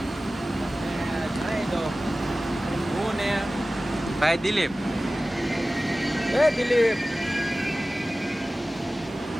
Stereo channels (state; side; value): normal; both; correlation 0.96